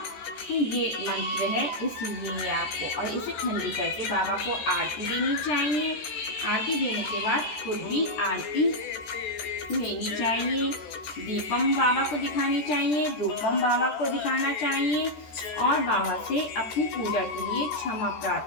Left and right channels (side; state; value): right; late; 14 ms